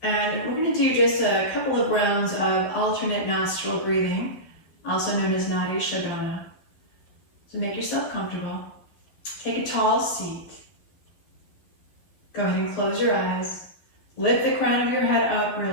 And we're going to do just a couple of rounds of alternate nostril breathing, also known as Nadi Shodhana. So make yourself comfortable. Take a tall seat. Go ahead and close your eyes. Lift the crown of your head up,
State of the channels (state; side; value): late; right; 12 ms